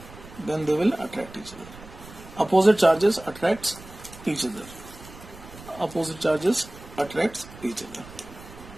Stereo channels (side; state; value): right; noise; rumble, 18 dB below the sound